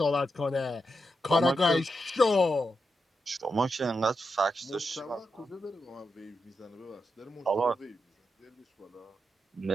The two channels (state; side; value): normal; both; correlation 0.86